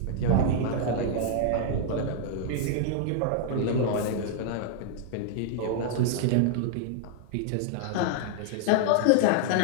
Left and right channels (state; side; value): different; both; correlation -0.01